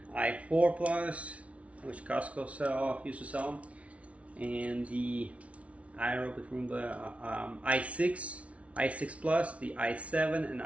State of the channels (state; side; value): late; left; 0.064 ms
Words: i4 Plus, which Costco used to sell, and the iRobot Roomba i6, i6 Plus, the i7 and